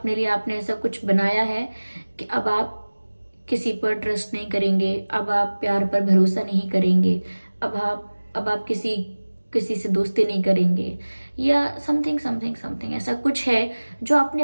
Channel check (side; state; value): both; inverted; correlation -1.00